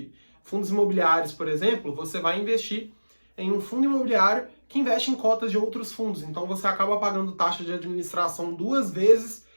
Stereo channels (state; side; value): inverted; both; correlation -1.00